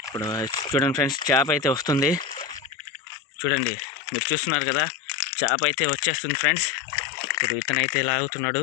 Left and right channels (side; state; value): right; drops out; at 2.8 s